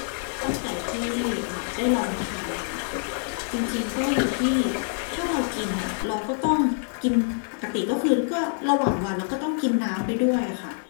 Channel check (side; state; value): right; silent; digital silence